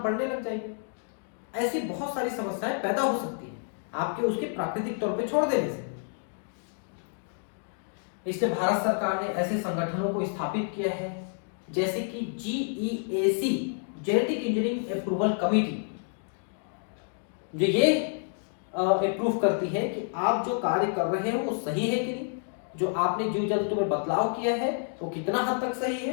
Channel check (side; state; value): right; silent; 58 dB below the other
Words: लग जाएगी। ऐसी बहुत सारी समस्याएं पैदा हो सकती है आपके उसके प्राकृतिक तौर पे छोड़ देने से। इसलिए भारत सरकार ने ऐसे संगठनों को स्थापित किया है जैसे कि GEAC, genetic engineering approval committee, जो ये अप्रूव करती है कि आप जो कार्य कर रहे हो वो सही है कि नहीं, जो आपने जीव जंतु में बदलाव किया है वो कितना हद तक सही